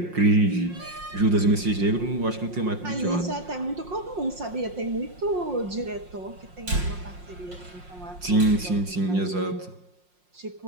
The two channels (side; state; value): left; late; 5.6 ms